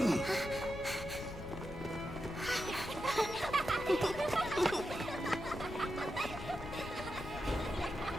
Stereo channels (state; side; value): noise; left; rumble, 11 dB below the sound